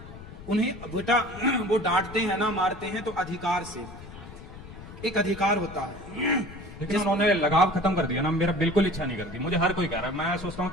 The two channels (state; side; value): noise; left; rumble, 15 dB below the sound